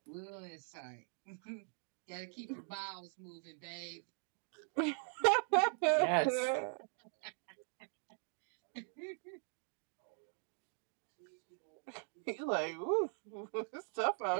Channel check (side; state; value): left; silent; 50 dB below the other